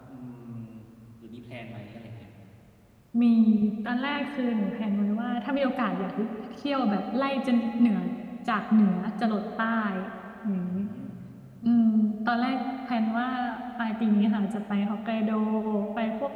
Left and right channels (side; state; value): both; identical; correlation 1.00